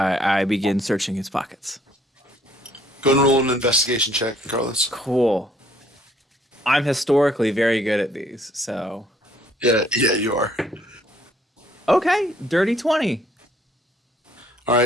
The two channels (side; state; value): both; normal; correlation 0.63